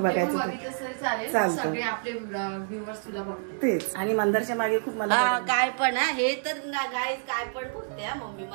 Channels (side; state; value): left; silent; digital silence